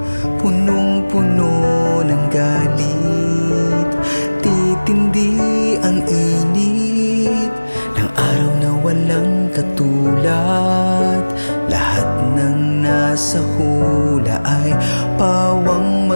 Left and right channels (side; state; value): both; inverted; correlation -1.00